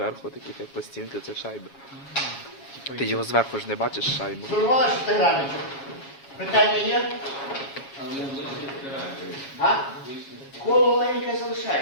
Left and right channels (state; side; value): late; right; 7.3 ms